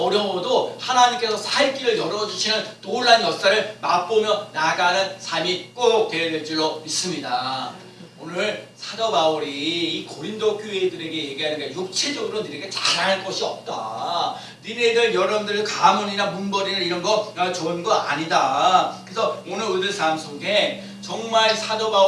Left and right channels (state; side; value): identical; both; correlation 1.00